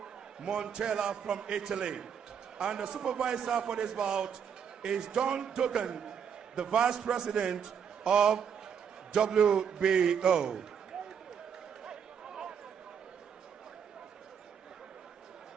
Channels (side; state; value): left; quieter; 7.5 dB